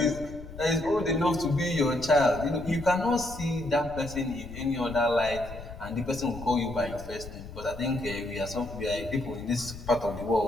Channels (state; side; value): noise; left; rumble, 13 dB below the sound